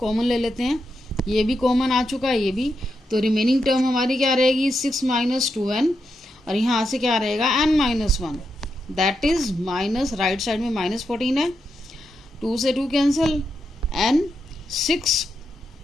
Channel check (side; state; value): both; normal; correlation 0.84